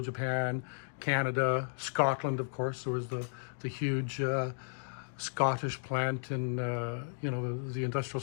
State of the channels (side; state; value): right; silent; digital silence